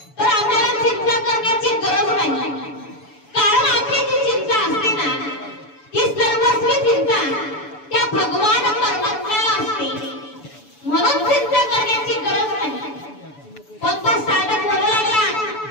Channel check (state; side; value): late; right; 6.9 ms